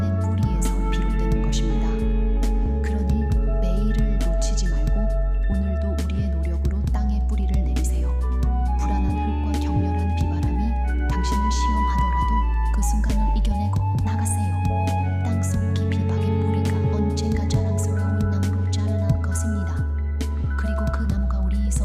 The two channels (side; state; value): both; identical; correlation 1.00